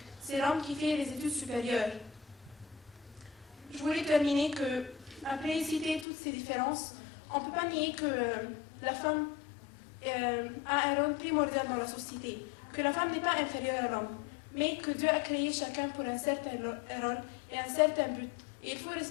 C'est l'homme qui fait les études supérieures. Je voulais terminer que, après citer toutes ces différences, on ne peut pas nier que la femme a un rôle primordial dans la société, que la femme n'est pas inférieure à l'homme, mais que Dieu a créé chacun pour un certain rôle et un certain but. Et il faut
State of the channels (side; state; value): right; drops out; at 6.1 s